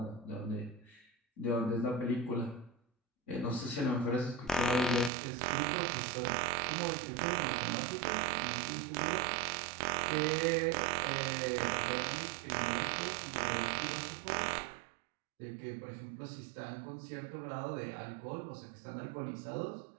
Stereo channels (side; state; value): left; drops out; at 5.1 s